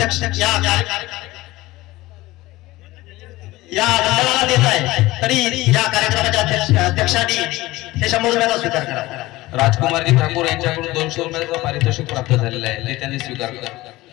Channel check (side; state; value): right; quieter; 18.7 dB